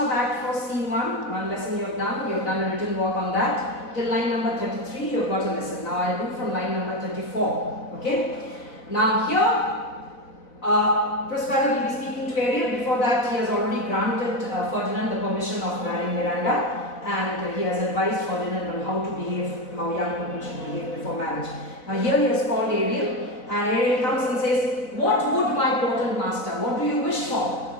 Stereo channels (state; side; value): late; right; 4.0 ms